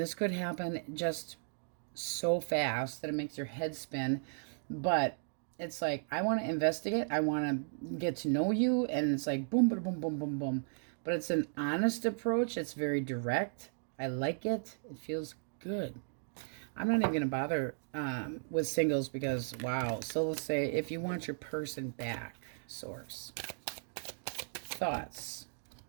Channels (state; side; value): silent; left; digital silence